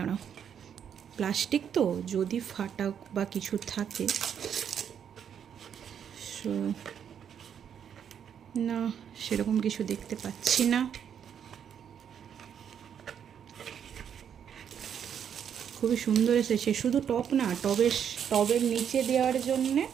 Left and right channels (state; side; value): quieter; left; 8.4 dB